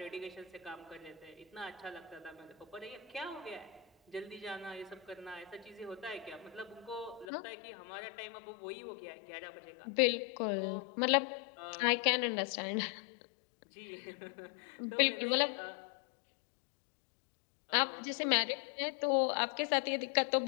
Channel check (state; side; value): drops out; right; at 7.2 s